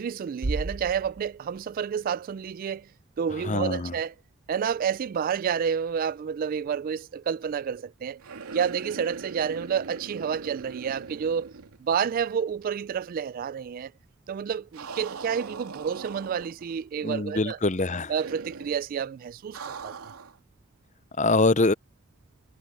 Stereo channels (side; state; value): left; quieter; 3.4 dB